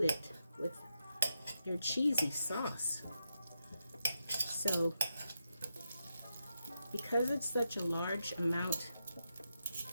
with your cheesy sauce. So because it's such a large amount,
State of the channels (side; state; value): both; inverted; correlation -0.85